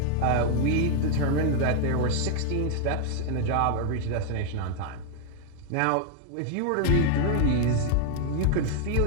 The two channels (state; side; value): different; both; correlation 0.00